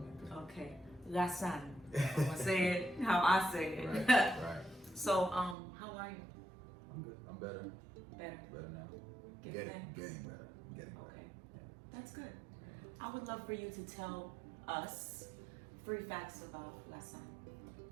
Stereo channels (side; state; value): left; drops out; at 5.6 s